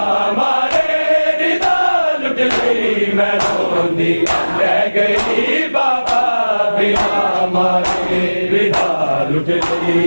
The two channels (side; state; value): both; inverted; correlation -1.00